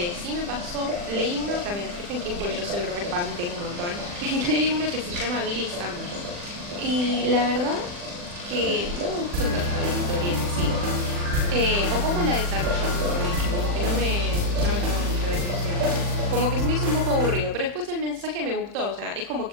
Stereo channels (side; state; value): left; late; 40 ms